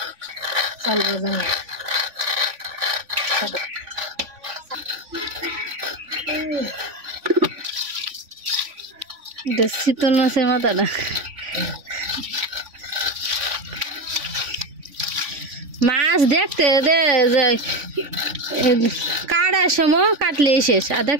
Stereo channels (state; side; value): late; left; 3.5 ms